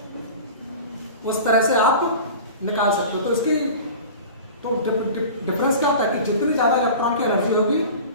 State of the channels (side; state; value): both; inverted; correlation -0.36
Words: उस तरह से आप निकाल सकते हो। तो इसकी तो डिफरेंस क्या होता है कि जितनी ज़्यादा इलेक्ट्रॉन की एनर्जी होगी